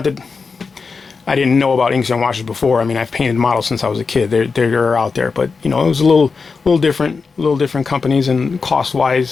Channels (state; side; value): quieter; right; 4.8 dB